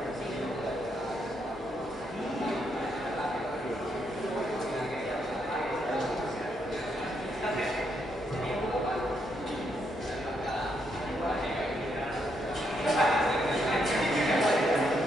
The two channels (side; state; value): both; normal; correlation 0.77